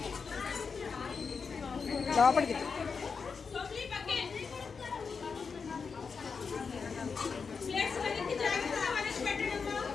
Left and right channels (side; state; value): right; quieter; 5.4 dB